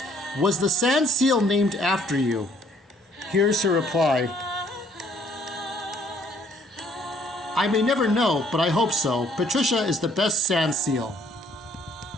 was the sand seal named after you? Here's her reply. I may never know, but I hope so. Patricia is the best sand seal.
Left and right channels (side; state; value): both; normal; correlation 0.62